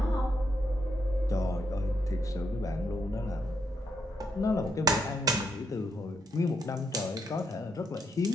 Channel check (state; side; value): normal; both; correlation 0.78